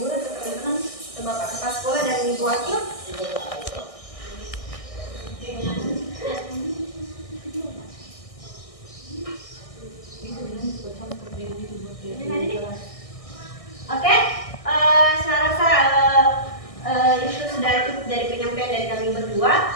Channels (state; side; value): late; right; 1.6 ms